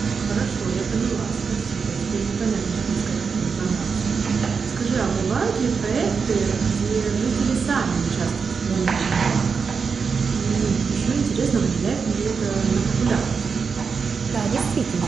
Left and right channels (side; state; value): left; quieter; 5.5 dB